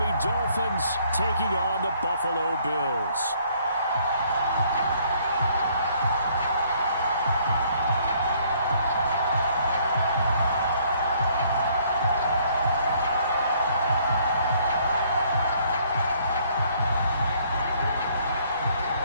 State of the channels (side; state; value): both; inverted; correlation -0.64